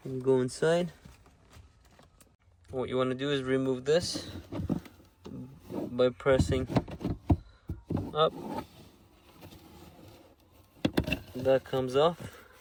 you go inside. What you want to do is remove this by pressing up. That comes off.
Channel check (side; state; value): both; identical; correlation 1.00